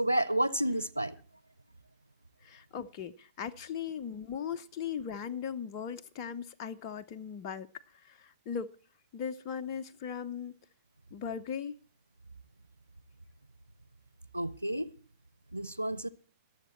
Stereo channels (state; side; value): inverted; both; correlation -0.70